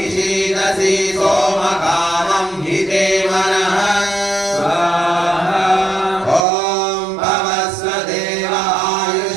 सोमकामं हि ते मनः स्वाहा ॐ भवस्व देव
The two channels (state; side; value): drops out; left; at 6.5 s